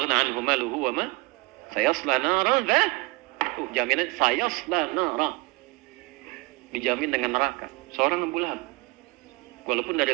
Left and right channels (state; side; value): quieter; left; 25.4 dB